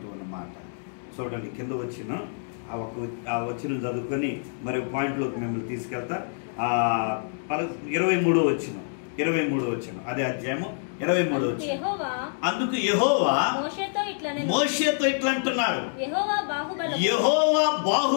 ఉన్నమాట చూడండి. కింద వచ్చిన ఆ వచ్చిన చదువుకొని మరి పాయింట్లోకి మిమ్మల్ని తీసుకెళ్తా. 23వ వచ్చిన అదే అధ్యాయము 23 వచ్చి, అందుకు యెహోవా మోషేతో ఇట్లా అంటున్నాడు, యెహోవా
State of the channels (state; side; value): silent; right; digital silence